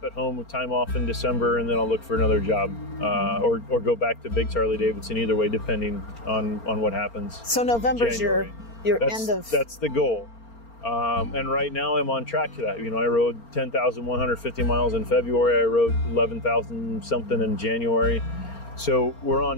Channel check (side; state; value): right; late; 4.4 ms